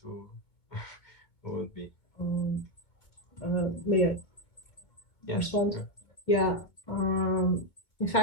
will would be. May I respond? Sure. Yeah. In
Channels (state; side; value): late; right; 2.2 ms